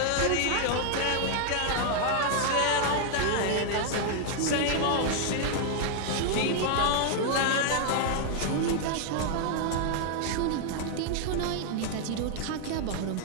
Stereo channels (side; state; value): both; different; correlation 0.00